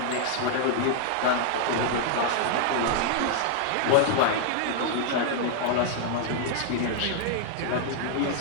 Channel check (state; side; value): different; both; correlation -0.01